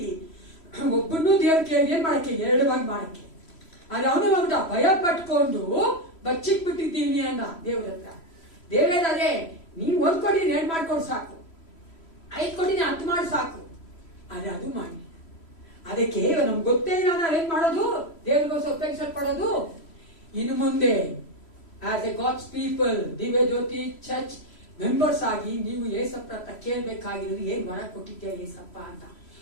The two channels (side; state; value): right; late; 3.1 ms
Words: ಒಬ್ಬನ್ನೂ ದೇವ್ರ ಏನ್ ಮಾಡಕ್ಕೆ, 2 ಭಾಗ ಮಾಡಕ್ಕೆ. ಆದ್ರೆ ಅವನು ಒಂದು ಭಯ ಪಟ್ಕೊಂಡು ಬಚ್ಚಿಕ್ ಬಿಟ್ಟಿದ್ದೀನಿ ಅಂದ ದೇವ್ರ ಹತ್ರ. ದೇವರೇ, ನೀವು 1 ಕೋಟಿ 2 ಮಾಡ್ಕೊಂಡು ಸಾಕು, 5 ಕೋಟಿ 10 ಮಾಡಿ ಸಾಕು, ಆದ್ರೆ ಅದು ಮಾಡಿ. ಅದಕ್ಕೆ ನಮ್ಗೆ ಗೊತ್ತೇ ಇಲ್ಲ ನಾವೇನ್ ಮಾಡೋದು, ದೇವರಿಗೋಸ್ಕರ ಉಪಯೋಗಿಸಲ್ಪಡೋದು. ಇನ್ನು ಮುಂದೆ ಆಸ್ ಎ ಗಾಡ್ಸ್ ಪೀಪಲ್, ದಿವ್ಯ ಜ್ಯೋತಿ ಚರ್ಚ್ ಮೆಂಬರ್ಸ್ ಆಗಿ ನೀವು ಏಸಪ್ಪ ಹತ್ರ ಕೇಳ್ಬೇಕಾಗಿರೋದು, ಏನ್ ವರ ಕೊಟ್ಟಿದ್ಯಾ ಏಸಪ್ಪ ಅಂತ.